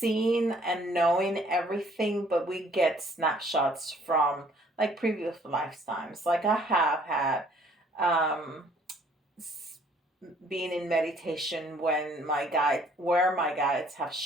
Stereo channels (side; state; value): both; normal; correlation 0.60